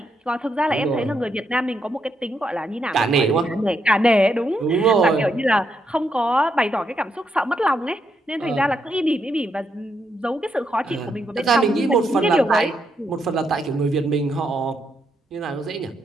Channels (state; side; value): normal; both; correlation 0.79